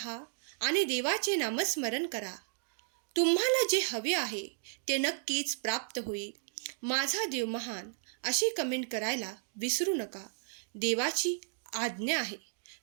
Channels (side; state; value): left; silent; 55 dB below the other